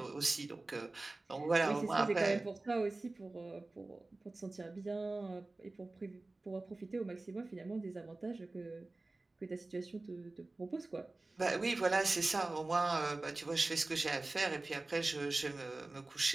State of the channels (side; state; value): left; quieter; 3.1 dB